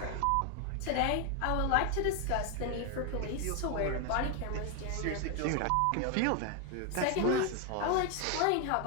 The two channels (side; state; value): both; different; correlation 0.01